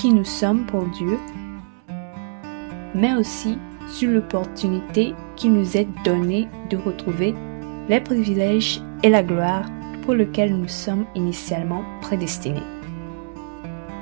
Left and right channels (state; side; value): silent; left; 64 dB below the other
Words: nous sommes pour Dieu, mais aussi sur l'opportunité qui nous est donnée de retrouver les privilèges et la gloire pour lesquels nous sommes initialement prédestinés.